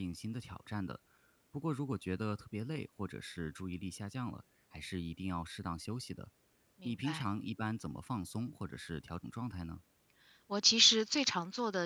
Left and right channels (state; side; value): identical; both; correlation 1.00